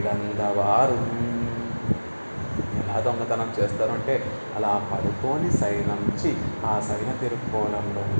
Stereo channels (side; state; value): both; inverted; correlation -1.00